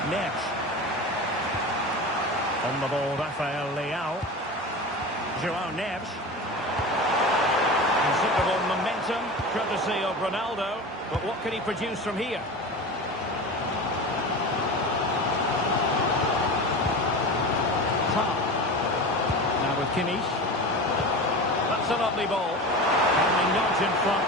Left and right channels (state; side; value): normal; both; correlation 0.29